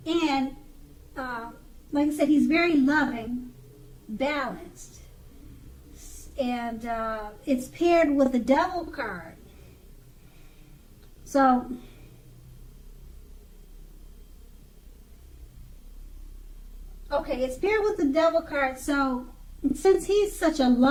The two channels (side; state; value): both; identical; correlation 1.00